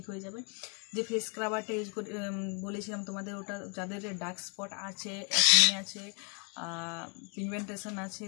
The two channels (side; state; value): right; quieter; 37.2 dB